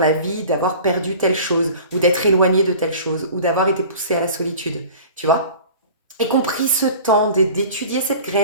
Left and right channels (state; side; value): inverted; both; correlation -0.42